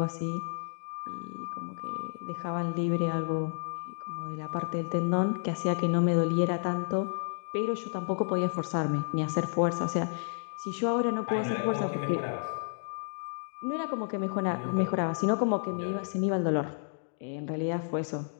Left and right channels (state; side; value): silent; right; digital silence